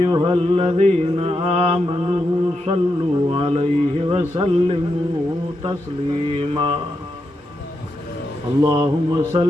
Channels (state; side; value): normal; both; correlation 0.85